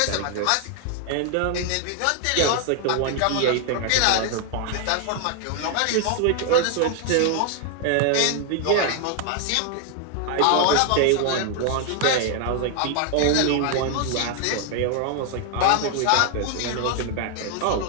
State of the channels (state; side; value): different; both; correlation 0.00